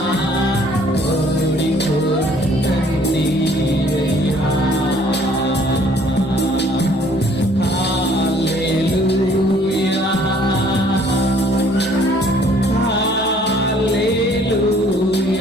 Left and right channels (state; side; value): normal; both; correlation 0.59